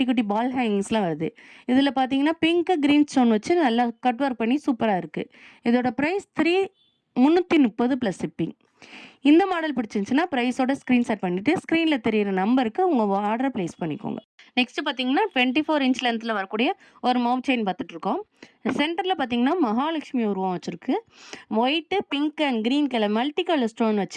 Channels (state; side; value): identical; both; correlation 1.00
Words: குட்டி பால் ஹேங்கிங்ஸ்லாம் வருது. இதில் பார்த்தீங்கன்னா பிங்க்கு க்ரீன் ஸ்டோன் வச்சு நல்லா கட் ஒர்க் பண்ணி சூப்பராக இருக்குது. இதோட ப்ரைஸ் 330 ப்ளஸ் ஷிப்பிங். இந்த மாடல் பிடிச்சிருந்துச்சுன்னா ப்ரைஸோட ஸ்க்ரீன்ஷாட் பண்ணிவிட்டு ஸ்க்ரீனில் தெரியிற நம்பருக்கு உங்கள் ஆர்டரை ப்ளேஸ் பண்ணிக்கோங்க. நெக்ஸ்ட் பார்த்தீங்கன்னா 24 இன்ச் லென்த்தில் வரக்கூடிய ஒரு மவுத் செயின் பார்த்துட்ருக்கோம். சென்டரில் பார்த்தீங்கன்னா மகாலட்சுமி உருவம் வச்சுருக்கு. White, pink and green colour multi colour stone